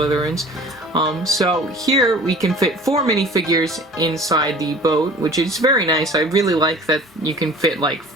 So here we can fit 4 minifigures inside the boat, which is very nice. I really like that you can fit like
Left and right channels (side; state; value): both; normal; correlation 0.45